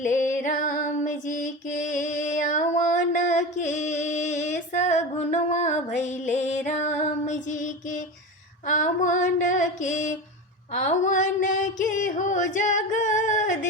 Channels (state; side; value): normal; both; correlation 0.25